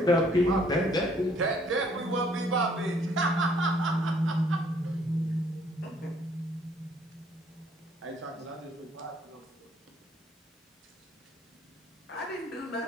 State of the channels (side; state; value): both; normal; correlation 0.63